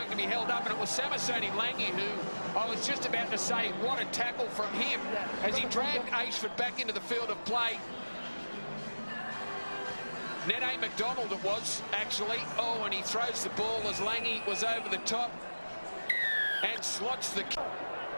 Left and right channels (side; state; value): both; inverted; correlation -1.00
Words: to be held up, and it was Samisoni Langi who I was just about to say what a tackle from him as he dragged Ashford back into the field of play. Nene McDonald it was, actually. Oh, and he throws the ball as Langi was over the top and slots the...